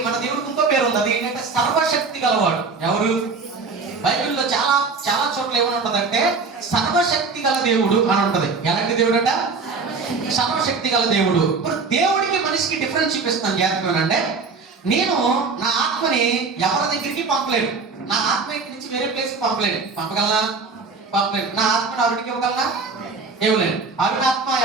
మన దేవుడికి ఇంకో పేరు ఉంది, అది ఏంటంటే సర్వశక్తి గలవాడు. ఎవరు? బైబిల్లో చాలా చాలా చోట్ల ఏమని ఉంటదంటే సర్వశక్తి గల దేవుడు అని ఉంటది. ఎలాంటి దేవుడు అంట? సర్వశక్తి గల దేవుడు. ఇప్పుడు దేవుడికి మనిషికి డిఫరెన్స్ చూపిస్తాను జాగ్రత్తగానంటే, నేను నా ఆత్మని ఎవరి దగ్గరికి పంపలేను. నా ఆత్మ ఇంటి నుంచి వేరే ప్లేస్ పంపలేను. పంపగలనా? పంపలేను. నా ఆత్మని అరుడికి ఇవ్వగలనా? ఇవ్వలేను. అరుడి ఆత్మ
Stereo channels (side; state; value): left; quieter; 4.5 dB